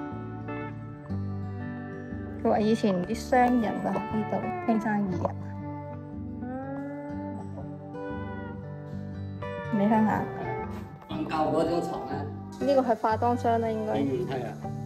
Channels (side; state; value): both; identical; correlation 1.00